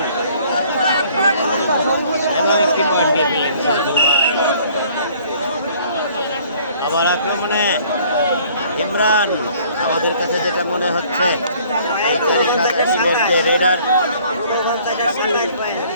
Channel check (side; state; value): both; inverted; correlation -0.57